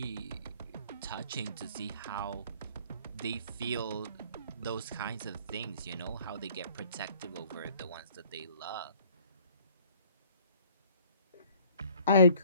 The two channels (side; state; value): both; inverted; correlation -0.55